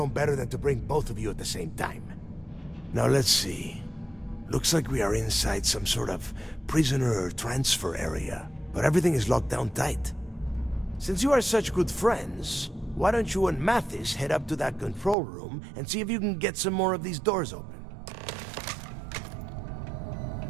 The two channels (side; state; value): left; drops out; at 15.2 s